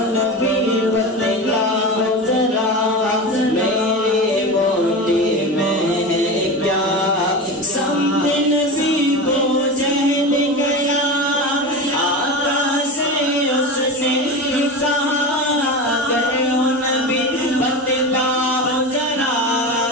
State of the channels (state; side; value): normal; both; correlation 0.25